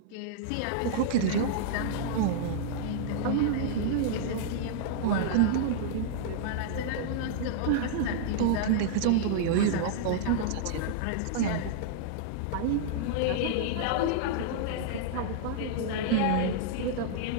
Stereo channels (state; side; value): different; both; correlation -0.01